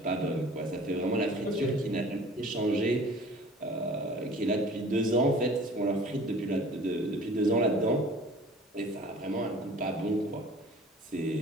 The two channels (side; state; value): both; normal; correlation 0.46